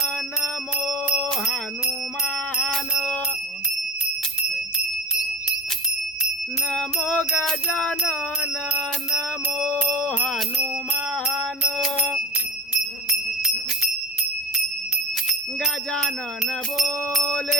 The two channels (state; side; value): normal; both; correlation 0.25